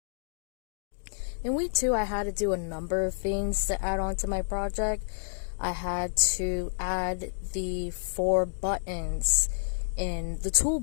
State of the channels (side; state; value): right; silent; digital silence